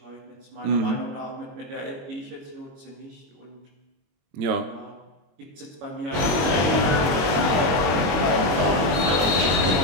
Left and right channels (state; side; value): late; left; 22 ms